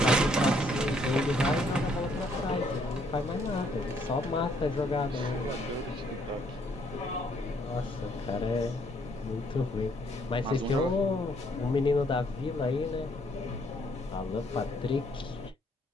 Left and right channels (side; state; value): both; normal; correlation 0.68